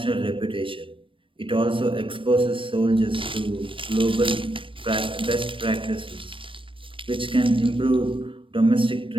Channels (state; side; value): late; left; 0.25 ms